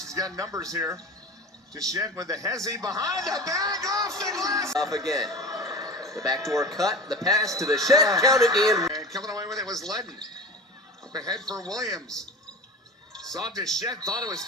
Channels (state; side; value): normal; both; correlation 0.33